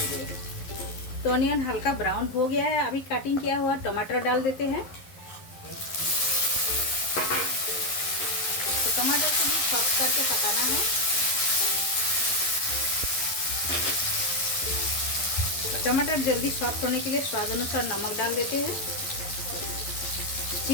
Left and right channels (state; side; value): late; right; 11 ms